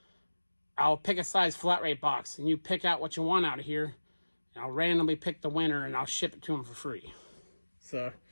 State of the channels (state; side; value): inverted; both; correlation -1.00